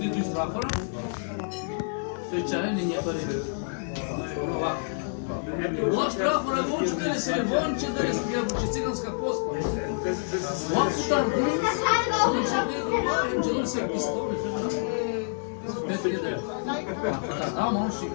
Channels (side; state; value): right; silent; digital silence